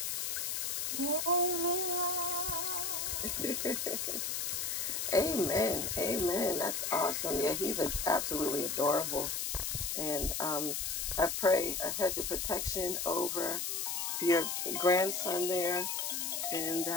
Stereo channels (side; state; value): left; noise; hiss, 1 dB below the sound